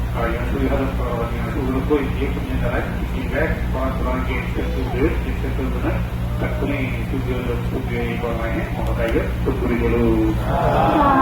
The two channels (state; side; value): identical; both; correlation 1.00